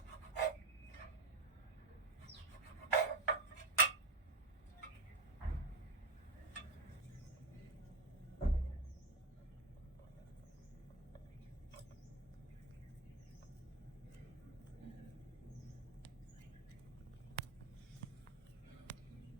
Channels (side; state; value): left; quieter; 3.2 dB